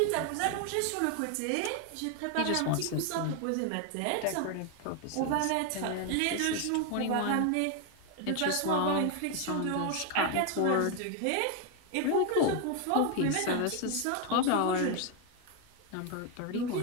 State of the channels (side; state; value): both; different; correlation 0.01